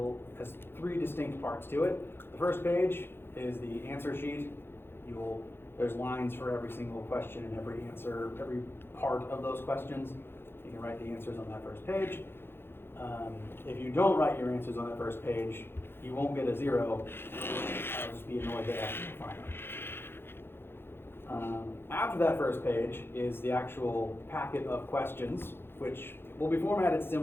has three distinct parts to it. The first page is the answer sheet. There's lines for every single question and every answer, every part of those questions. You can write the answers on that first page. If you don't write your answers on that first page, you won't get a 0. I'll just be annoyed that after you find them. After that first page is the actual packet of questions, which will be formatted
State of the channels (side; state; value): right; late; 0.11 ms